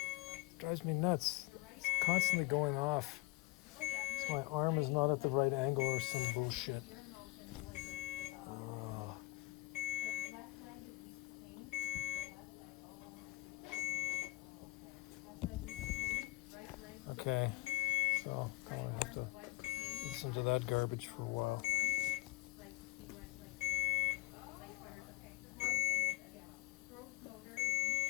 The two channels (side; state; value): right; quieter; 20.8 dB